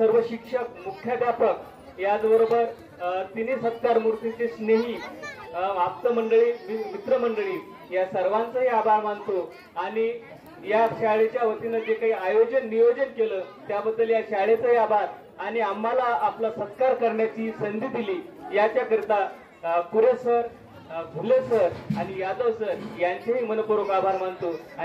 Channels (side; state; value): both; identical; correlation 1.00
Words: शिक्षक, मुख्याध्यापक, याचबरोबर तिन्ही सत्कार मूर्तीचे स्नेही, आप्त मंडळी, मित्रमंडळी, या सर्वांचाही आभार मानतो. आणि या शाळेच्या वतीनं जे काही आयोजन नियोजन केलं त्याबद्दल या शाळेचाही आभार, आणि आम्हाला आपला सत्कार करण्याची संधी दिली याच्याकरिता कुरे सर, भुले सर आणि यादव सर यांचेही मनपूर्वक आभार मानतो